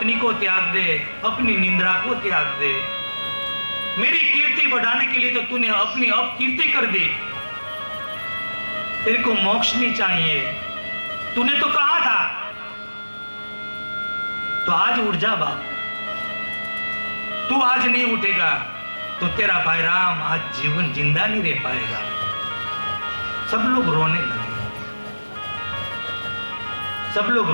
को त्याग दे, अपनी निंद्रा को त्याग दे। मेरी कीर्ति बढ़ाने के लिए तो तूने अपनी अपकीर्ति कर दी। तेरे को मोक्ष नहीं चाहिए, तूने तो कहा था। तो आज उठ जा बाप, तू आज नहीं उठेगा तो तेरा भाई राम आज जीवन जिंदा नहीं रह पाएगा। सब लोग रोने लगे, सब लोग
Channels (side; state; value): both; inverted; correlation -1.00